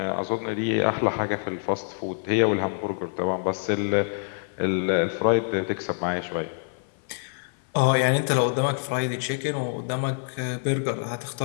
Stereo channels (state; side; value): silent; right; 55 dB below the other